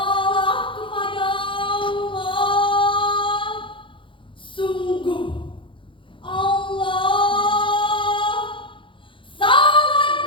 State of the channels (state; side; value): late; right; 0.25 ms